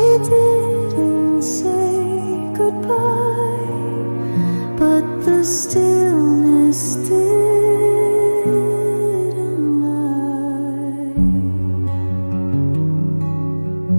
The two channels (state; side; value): inverted; both; correlation -1.00